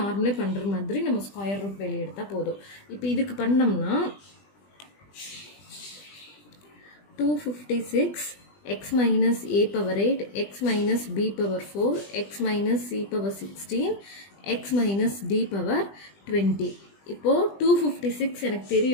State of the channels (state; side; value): late; right; 20 ms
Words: பண்ணுற மாதிரி நம்ம ஸ்கொயர் ரூட் வெளியே எடுத்தால் போதும். இப்போ இதுக்கு பண்ணோம்னா 256 x minus a power 8 x minus b power 4 x minus c power 16 x minus d power 20. இப்போ 256 எனக்கு